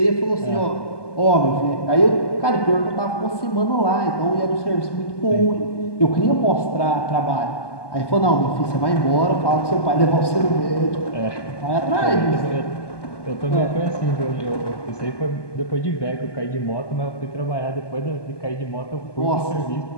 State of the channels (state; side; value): late; right; 1.2 ms